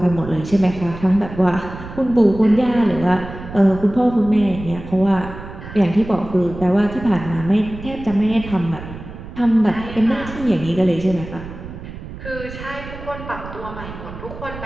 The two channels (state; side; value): noise; right; rumble, 12 dB below the sound